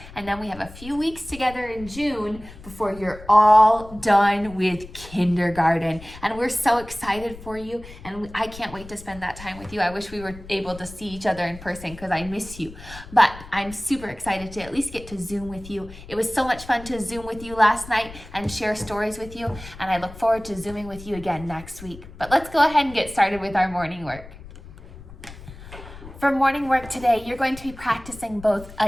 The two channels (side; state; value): left; noise; rumble, 16 dB below the sound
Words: And then we have a few weeks together in June before you're all done with kindergarten. And we're so excited for you. And I can't wait to spend that time with you. I wish we were able to see each other in person because I miss you. But I'm super excited to at least get to Zoom with you. It was so much fun to Zoom with you last night and share stories with you. And I look forward to Zooming with you again next week. But let's go ahead and get started with our morning work. For morning work today, you're going to be practicing both